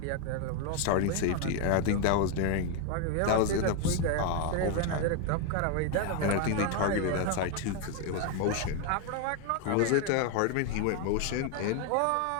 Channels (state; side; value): different; both; correlation 0.01